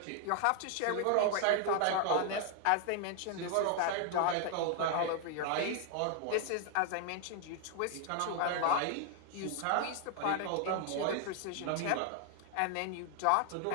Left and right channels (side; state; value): both; different; correlation 0.00